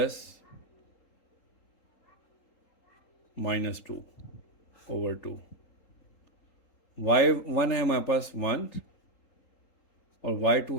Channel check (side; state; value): right; late; 3.8 ms